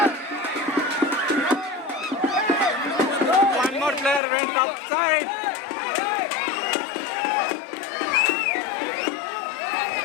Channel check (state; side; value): drops out; right; at 4.2 s